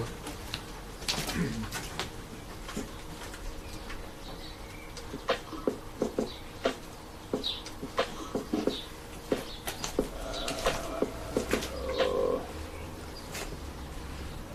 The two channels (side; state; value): both; identical; correlation 1.00